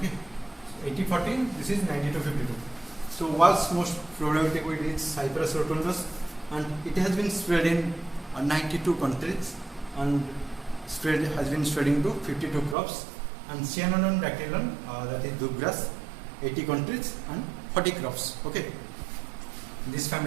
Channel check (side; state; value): left; drops out; at 12.8 s